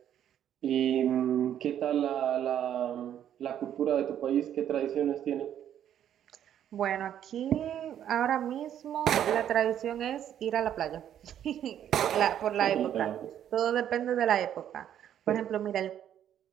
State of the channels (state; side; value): quieter; left; 10.2 dB